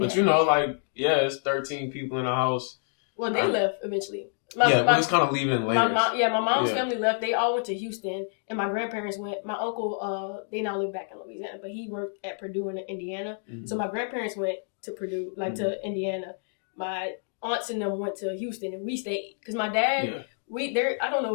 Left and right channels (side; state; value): right; silent; digital silence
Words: But like, it's 13 people in the house. Well, they left eventually. we was kind of leaving in later. My mom's family left. They all went to Houston, and my grandparents went. My uncle, they now live back in Louisiana, but he worked at Purdue in Indiana. Mm-hmm. So my grandparents went to Purdue, to Indiana. My aunts and them went to Houston, and we stayed because my dad. I don't know